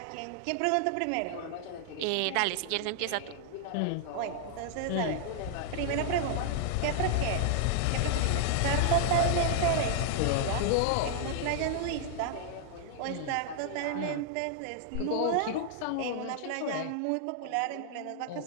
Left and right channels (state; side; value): different; both; correlation -0.01